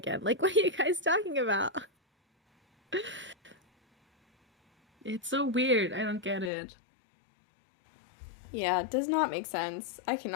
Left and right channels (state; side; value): drops out; right; at 6.5 s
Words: Like, what are you guys talking about? It's so weird. I don't get it. Yeah, it does not make sense. I